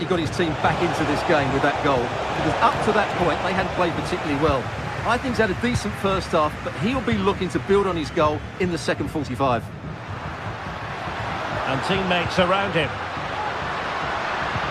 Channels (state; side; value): identical; both; correlation 1.00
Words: got his team back into this game with that goal. Because up to that point, they hadn't played particularly well. I think he's had a decent first half, but he'll be looking to build on his goal in the second 45. And teammates around him.